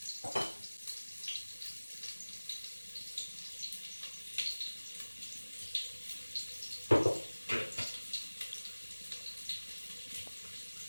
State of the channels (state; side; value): inverted; both; correlation -1.00